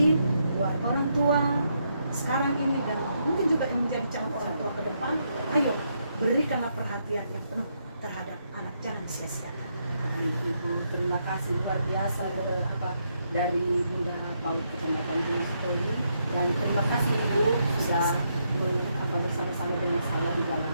buat orang tua sekarang ini dan mungkin juga yang menjadi calon orang tua ke depan, ayo berikanlah perhatian yang penuh terhadap anak, jangan sia-siakan. Ibu, terima kasih luar biasa dari Bunda Paul Kecamatan Gunung Story, dan terima kasih Ibu sudah bersama-sama dengan saya di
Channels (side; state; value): both; inverted; correlation -0.78